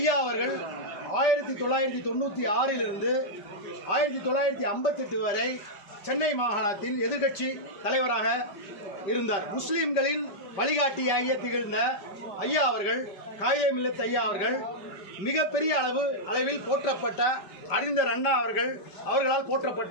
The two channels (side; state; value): right; late; 5.1 ms